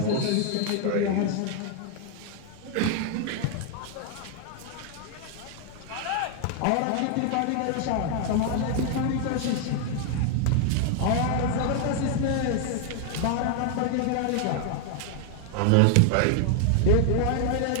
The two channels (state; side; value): different; both; correlation 0.00